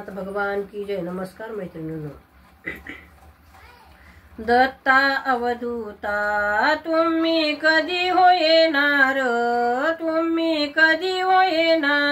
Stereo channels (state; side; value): identical; both; correlation 1.00